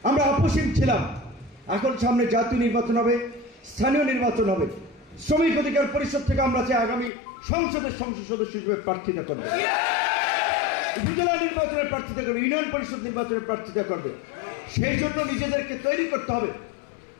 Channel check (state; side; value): drops out; right; at 7.1 s